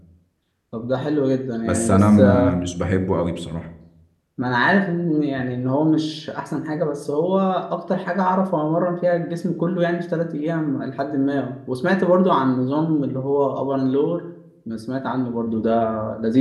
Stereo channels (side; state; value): both; identical; correlation 1.00